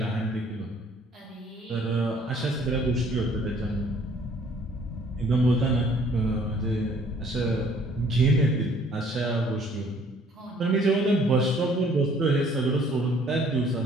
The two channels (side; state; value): both; normal; correlation 0.59